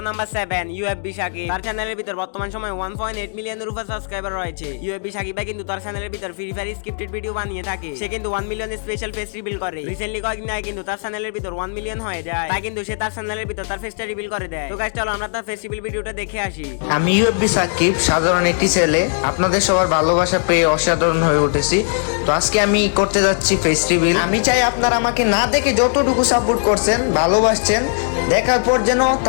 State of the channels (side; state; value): right; silent; 57 dB below the other